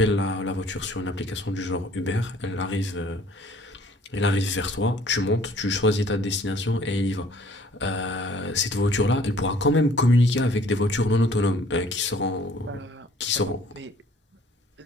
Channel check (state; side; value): normal; both; correlation 0.56